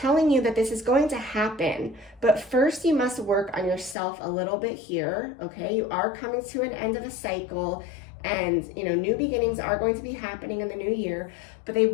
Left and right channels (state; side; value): drops out; right; at 4.0 s